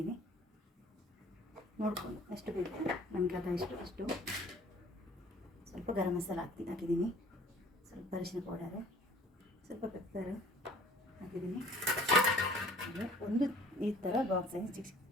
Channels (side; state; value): both; normal; correlation 0.52